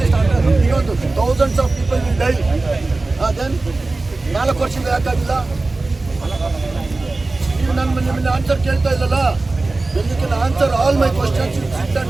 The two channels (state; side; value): quieter; left; 3.3 dB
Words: beyond thousands of people will die. Then 4 ವರ್ಷದಿಂದ ಯಾಕಾಗಿಲ್ಲ? ನೀವು ನಿಮ್ಮನ್ನ ಆನ್ಸರ್ ಕೇಳ್ತಾ ಇಲ್ಲಲ್ಲ. When you can answer all my questions, you sit